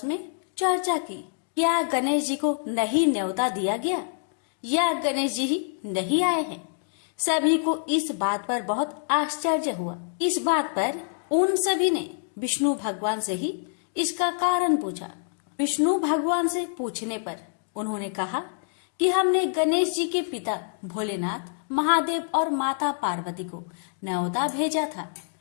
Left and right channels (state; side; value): silent; right; digital silence